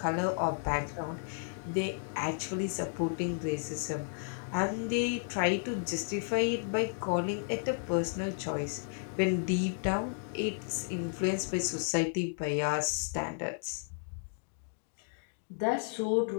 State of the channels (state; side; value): silent; right; digital silence